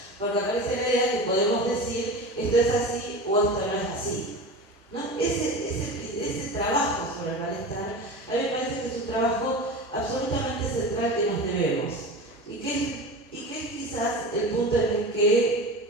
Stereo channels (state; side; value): normal; both; correlation 0.30